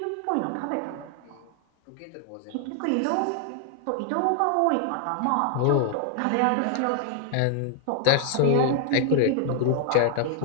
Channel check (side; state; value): both; different; correlation 0.00